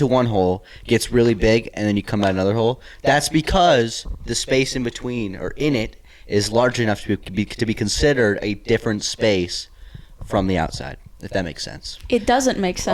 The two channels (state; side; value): identical; both; correlation 1.00